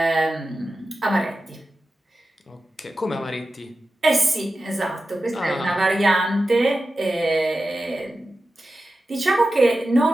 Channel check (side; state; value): both; normal; correlation 0.92